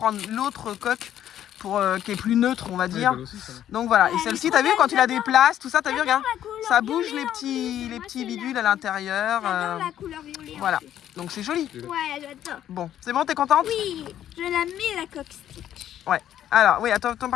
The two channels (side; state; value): right; quieter; 11.1 dB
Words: l'autre coque pour, qui est plus neutre, on va Ouais, dire. belle aussi, ça va. Donc voilà. Et elle celle-ci, est t'as trop vu quand belle, il a des places, tout ça, t'as vu, regarde. La couleur Ça bouge violet les en petits, plus. les Moi, petits c'est bidules la- à l'intérieur. J'adore la couleur violet. en voilà. plus. Donc c'est joli. Ouais, j'adore. Bon, c'est bon, t'es contente? Oui, je la mets la coque Stitch. Ouais. Alors, oui, attends,